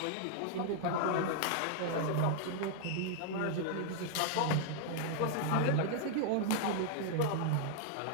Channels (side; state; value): both; different; correlation 0.00